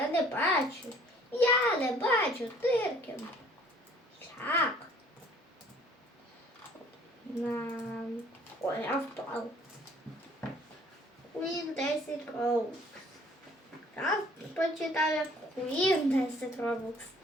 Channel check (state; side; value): normal; both; correlation 0.56